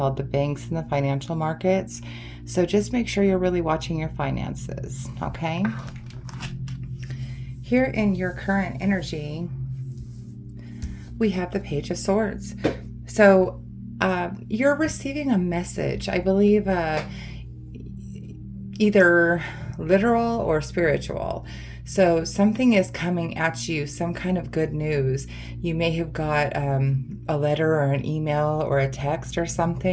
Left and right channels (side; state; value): both; identical; correlation 1.00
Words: the banks and the financial markets. So just make sure you're really watching your finances, okay? Here in your current energy, we have the Page of Swords. So you're receiving a message, I believe, either literal or spiritual. So something is coming at you, some kind of good news. You may have got a letter or an email or a text or